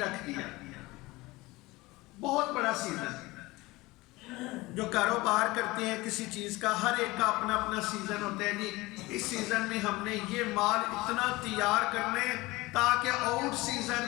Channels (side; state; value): right; quieter; 21.0 dB